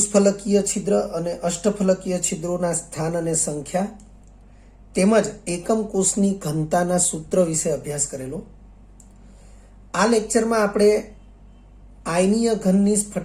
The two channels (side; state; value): both; identical; correlation 1.00